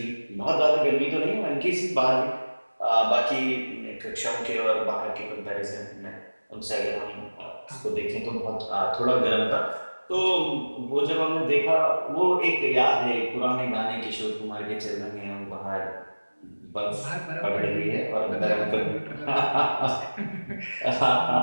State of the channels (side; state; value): both; inverted; correlation -1.00